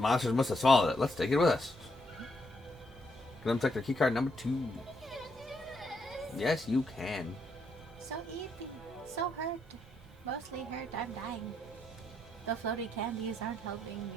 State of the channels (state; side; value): normal; both; correlation 0.77